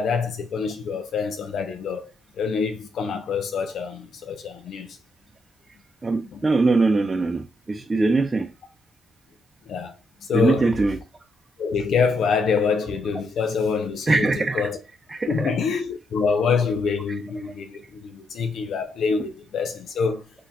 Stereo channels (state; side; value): normal; both; correlation 0.78